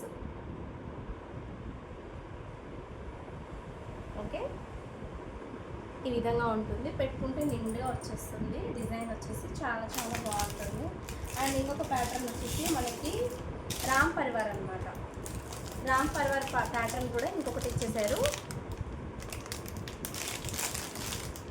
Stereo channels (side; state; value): both; identical; correlation 1.00